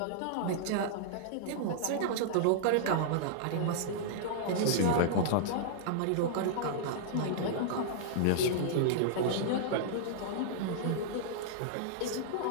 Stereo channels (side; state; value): both; different; correlation -0.02